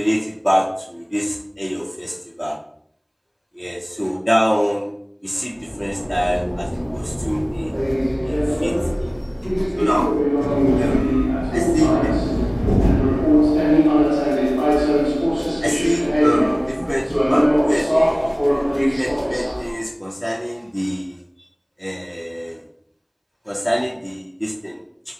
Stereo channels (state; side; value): identical; both; correlation 1.00